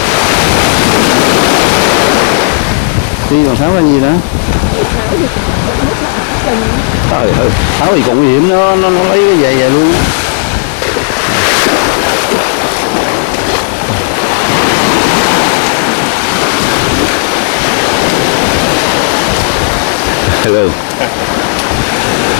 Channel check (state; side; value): silent; right; 74 dB below the other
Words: Đi còn Tháo là gì đó? Tháo thì cũng mất lại chân. Trời ơi, Tháo thì còn nguy hiểm, nó lấy cái giày về luôn. Hello.